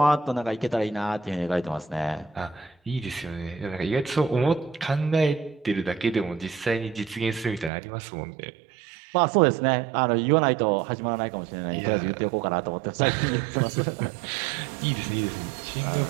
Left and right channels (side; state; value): left; drops out; at 7.7 s